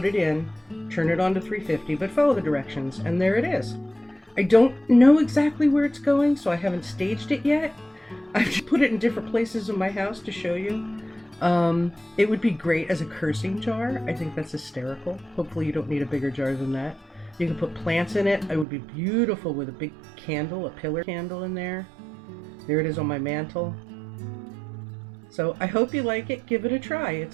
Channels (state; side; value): drops out; left; at 18.7 s